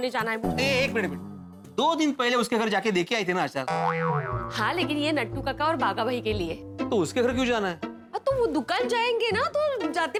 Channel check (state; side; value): identical; both; correlation 1.00